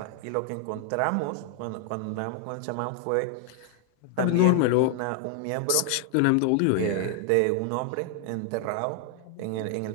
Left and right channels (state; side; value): different; both; correlation 0.00